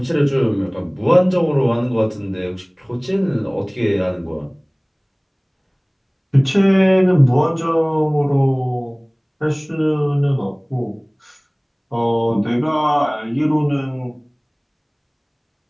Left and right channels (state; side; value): identical; both; correlation 1.00